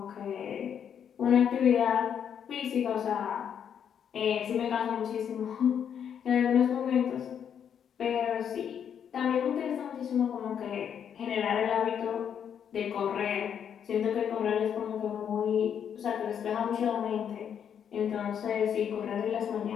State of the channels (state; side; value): quieter; right; 8.3 dB